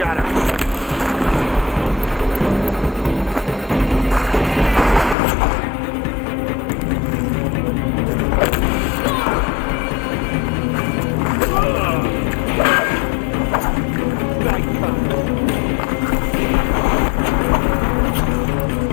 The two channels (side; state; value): right; drops out; at 5.2 s